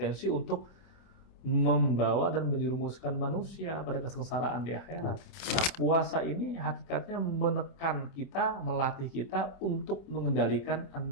untuk membawa dan menjerumuskan manusia pada kesengsaraan di akhirat. Nah, puasa ini hakikatnya menekan kita, melatih kita untuk mengendalikan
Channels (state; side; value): late; right; 27 ms